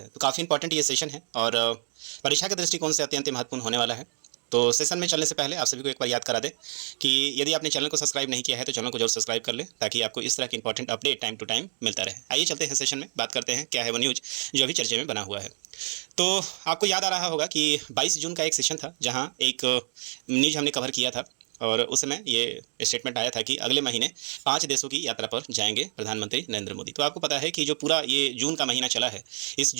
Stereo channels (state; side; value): silent; left; 56 dB below the other